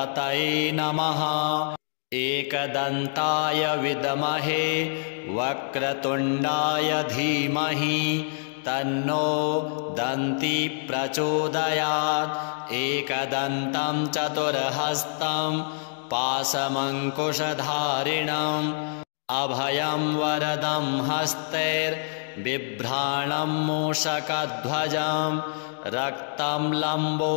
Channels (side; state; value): right; silent; digital silence